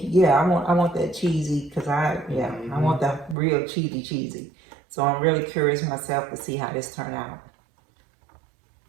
yeah, I want that cheesy because I want that real cheesy. So I'm really curious myself to see how this turn out.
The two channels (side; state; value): left; drops out; at 3.4 s